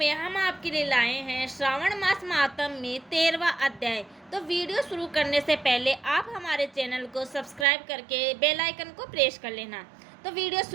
हम आपके लिए लाए हैं श्रावण मास महात्म्य में 13वां अध्याय। तो वीडियो शुरू करने से पहले आप हमारे चैनल को सब्सक्राइब करके बेल आइकन को प्रेस कर लेना। तो वीडियो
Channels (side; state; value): left; drops out; at 7.7 s